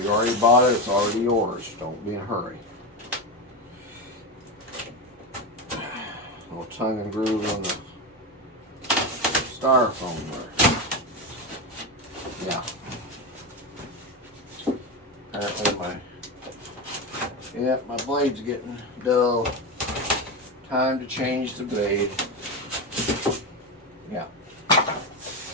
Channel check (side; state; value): both; normal; correlation 0.16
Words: already bought it, it's already yours. Don't be in a hurry. Little tongue and groove on the styrofoam there. Yeah. Apparently my blade's getting dull. Time to change the blade. Yeah.